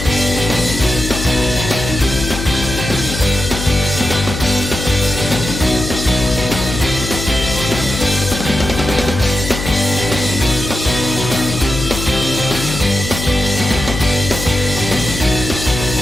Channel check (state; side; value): noise; left; hum, 6 dB below the sound